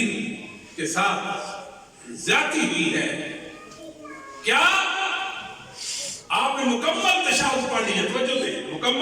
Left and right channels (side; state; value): both; identical; correlation 1.00